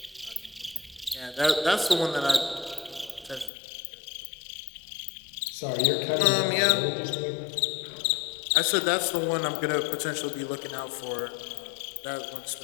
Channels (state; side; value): drops out; right; at 3.5 s